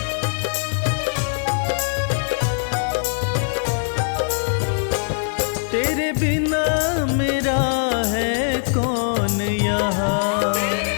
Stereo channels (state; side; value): silent; right; 65 dB below the other